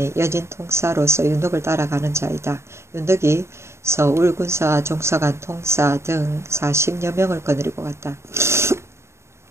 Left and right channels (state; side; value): late; left; 0.13 ms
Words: 여진 통사로서 윤덕을 따라가는 자이다. 윤덕이 서울 군사 종사관 통사 등 40여 명을 거느리고 갔다.